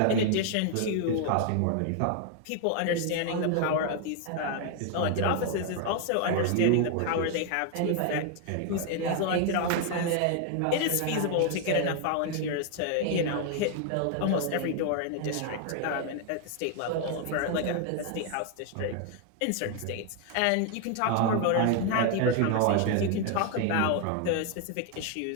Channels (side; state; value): both; different; correlation 0.00